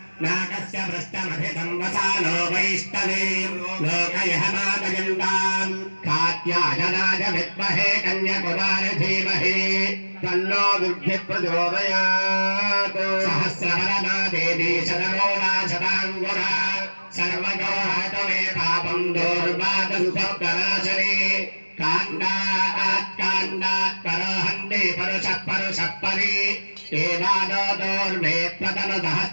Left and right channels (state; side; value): inverted; both; correlation -1.00